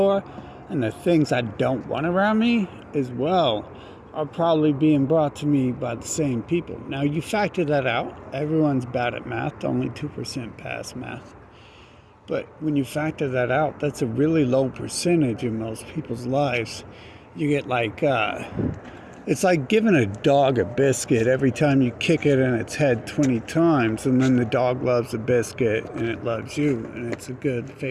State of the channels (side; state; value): both; identical; correlation 1.00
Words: and the things I don't want around me as well are probably being brought to me by the same people. Now you factor that out. Everyone's bad at math, only 2% pass math. But when you factor that out, that's a really low percentage in most people's lives. You get it's like giving a dog a biscuit every time you kick it in its head 20 times, and then the dog loves the biscuit and it loves you, and it's a good,